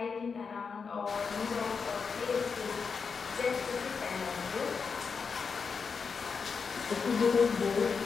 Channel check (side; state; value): right; quieter; 5.5 dB